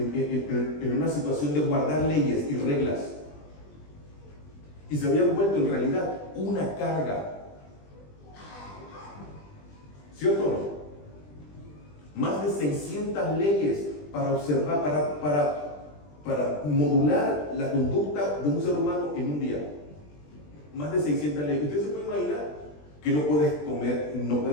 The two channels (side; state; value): right; late; 20 ms